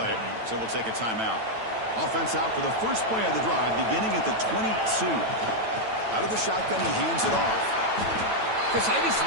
so we'll take a timeout. Offense out for the first play of the drive, beginning at the 22. Out of the shotgun, he hands it off. Because I just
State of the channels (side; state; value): left; late; 9.0 ms